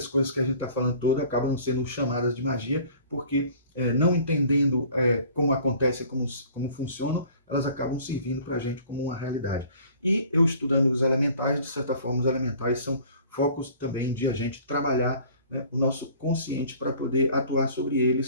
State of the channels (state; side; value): inverted; both; correlation -0.50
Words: coisas que a gente está falando todas acabam sendo chamadas de magia, porque não entendendo como acontece, como funcionam, elas acabam servindo para a gente como uma realidade. E eu estudando os elementais, de certa forma, os elementais são focos também de a gente trabalhar, né, o nosso consciente para poder atuar sobre